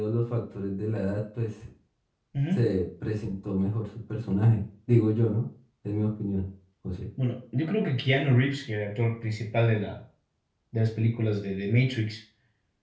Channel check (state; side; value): identical; both; correlation 1.00